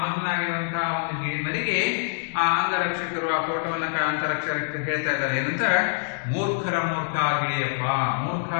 ಮಗ್ನನಾಗಿರುವಂತಹ ಒಂದು ಗಿಳಿಮರಿಗೆ ಆ ಅಂಗರಕ್ಷಕರು, ಆ ತೋಟವನ್ನ ಅಂತರಕ್ಷಕರು ಹೇಳ್ತಾ ಇದ್ದಾರೆ ಏನಂತ, ಮೂರ್ಖರ ಮೂರ್ಖ ಗಿಳಿಯಪ್ಪ. ಮೂರ್ಖ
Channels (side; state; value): right; silent; digital silence